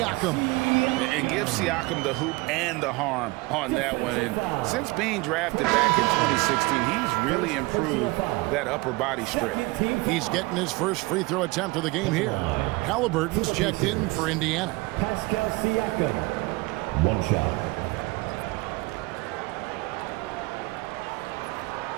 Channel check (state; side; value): quieter; left; 23.5 dB